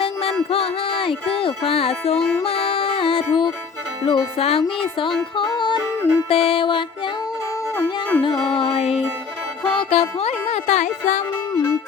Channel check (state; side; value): quieter; right; 5.5 dB